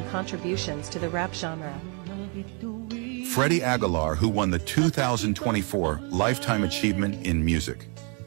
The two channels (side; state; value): left; quieter; 35.8 dB